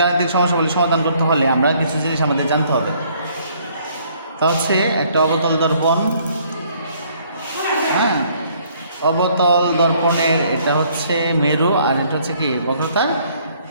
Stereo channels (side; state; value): both; inverted; correlation -0.63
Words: গাণিতিক সমস্যাবলী সমাধান করতে হলে আমরা কিছু জিনিস আমাদের জানতে হবে। তা হচ্ছে একটা অবতল দর্পণ, অবতল দর্পণের এটা হচ্ছে মেরু আর এটা হচ্ছে কি বক্রতার